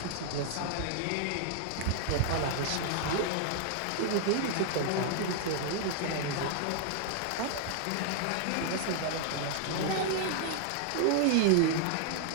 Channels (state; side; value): different; both; correlation 0.00